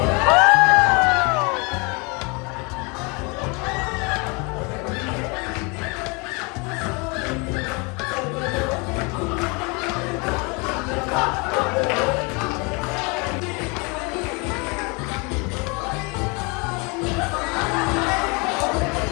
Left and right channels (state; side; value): quieter; right; 30.2 dB